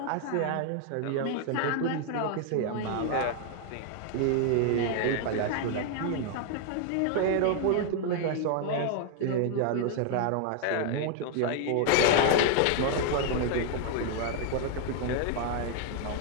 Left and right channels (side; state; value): both; different; correlation 0.00